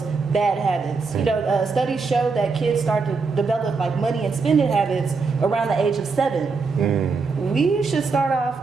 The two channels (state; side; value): quieter; left; 4.6 dB